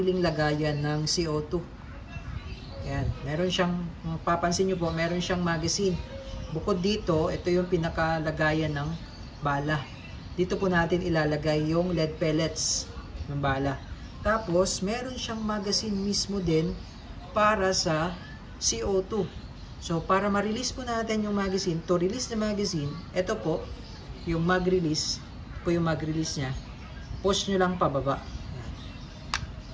lagayan ng CO2. Ayan, meron siyang, papansin nyo po, meron siyang magazine. Bukod dito, ito yung pinaka lagayan ng bala. Dito po natin ilalagay yung lead pellets ng bala. Tapos, meron siyang magazine mismo din para sa CO2. So, para ma-release po natin yung magazine, to release the magazine, ito po, yung mag-release, po yung mag-release niya, push nyo lang pababa.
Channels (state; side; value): identical; both; correlation 1.00